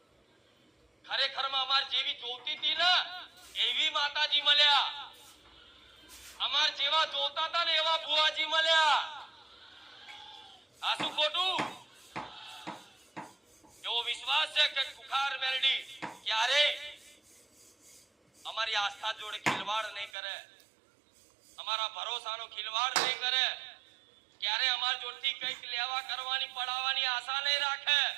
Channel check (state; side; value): drops out; left; at 20.1 s